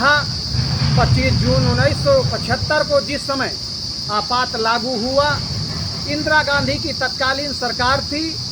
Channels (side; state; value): both; identical; correlation 1.00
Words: 25 जून 1975 को जिस समय आपात लागू हुआ, इंदिरा गांधी की तत्कालीन सरकार थी।